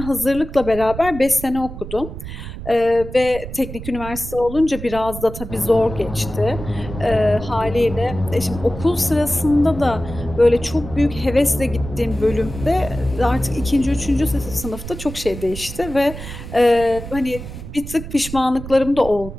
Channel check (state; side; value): noise; right; rumble, 11 dB below the sound